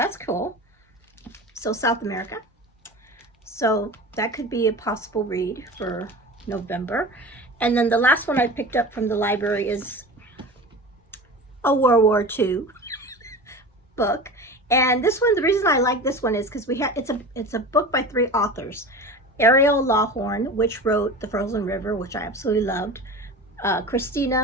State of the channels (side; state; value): both; normal; correlation 0.33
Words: cool. So South America. So that could be a possible read for November. And then the last one I picked up from the library is a World War II book. And this one, the reason I like this one is because it's a book by 3 authors. Ariel Lawhorn, which wrote The Frozen River, which I absolutely loved. Christina